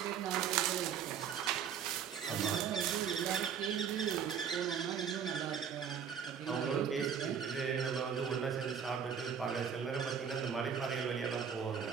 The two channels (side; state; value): left; quieter; 7.6 dB